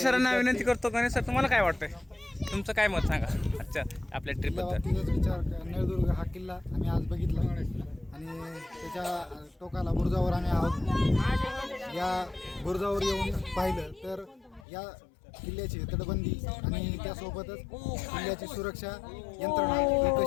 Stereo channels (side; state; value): right; drops out; at 14.7 s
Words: सरांना विनंती करतो, गणेश सर तुम्हाला काय वाटतंय, तुमचं काय मत सांगा अच्छा आपल्या ट्रिपबद्दल। विचार नळदुर्ग हा किल्ला आम्ही आज बघितला आणि त्याच्या टोकाला बुरुजावर आम्ही आहोत। या बुरुजावर येऊन पाहिलं तर या किल्ल्याची तटबंदी आणि त्यासोबतच किल्ल्याची सुरक्षा यंत्रणा